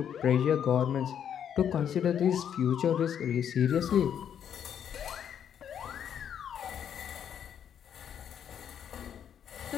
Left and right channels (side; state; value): right; quieter; 8.9 dB